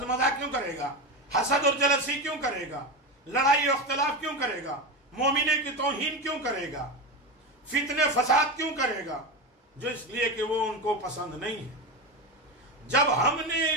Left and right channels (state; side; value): normal; both; correlation 0.19